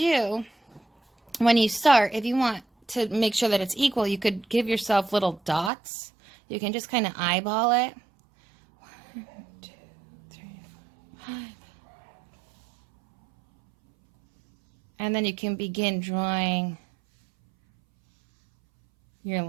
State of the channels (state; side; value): drops out; left; at 5.7 s